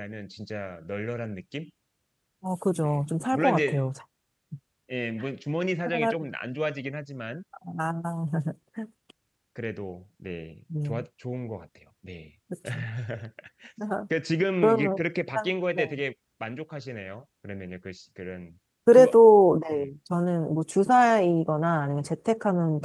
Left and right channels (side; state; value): both; identical; correlation 1.00